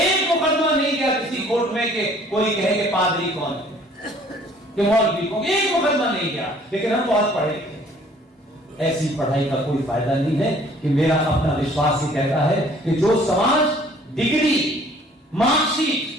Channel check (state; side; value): normal; both; correlation 0.56